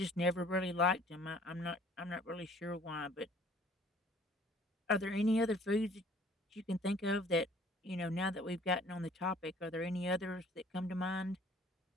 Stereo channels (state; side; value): normal; both; correlation 0.55